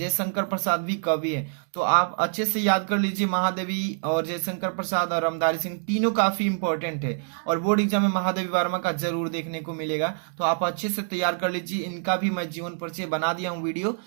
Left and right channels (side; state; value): left; silent; digital silence